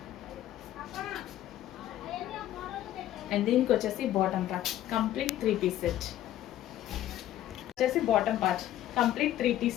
అండ్ దీనికి వచ్చేసి bottom part complete 3 piece set. వచ్చేసి bottom part complete 3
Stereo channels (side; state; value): right; quieter; 12.8 dB